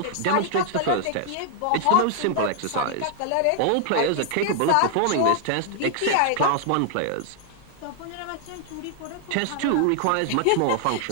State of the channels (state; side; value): different; both; correlation 0.00